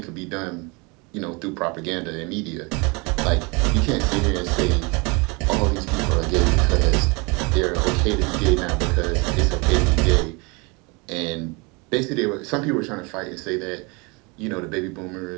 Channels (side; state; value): left; quieter; 28.9 dB